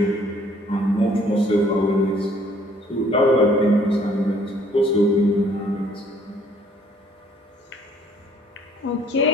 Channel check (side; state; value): both; normal; correlation 0.60